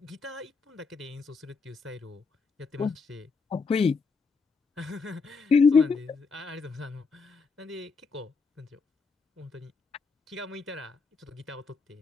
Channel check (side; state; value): right; quieter; 4.8 dB